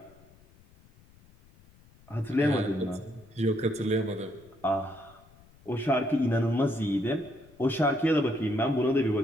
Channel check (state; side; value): noise; left; rumble, 27 dB below the sound